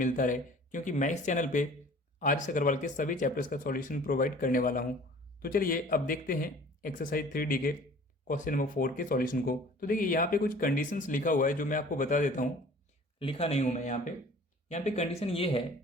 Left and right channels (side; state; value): both; normal; correlation 0.48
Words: रहे, क्योंकि मैं इस चैनल पे आर एस अग्रवाल के सभी चैप्टर्स का सॉल्यूशन प्रोवाइड करने वाला हूँ। तो चलिए अब देखते हैं एक्सरसाइज 3D के क्वेश्चन नंबर 4 के सॉल्यूशन को। तो देखिए यहाँ पे कुछ कंडीशंस लिखा हुआ है जो मैं आपको बता देता हूँ। लिखा नहीं हूँ मैं यहाँ पे कंडीशन ये है